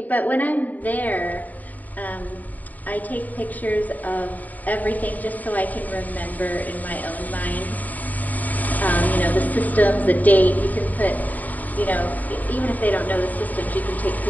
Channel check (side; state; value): right; late; 0.079 ms